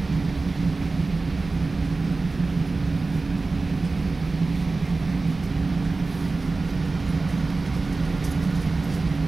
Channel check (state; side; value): quieter; left; 3.7 dB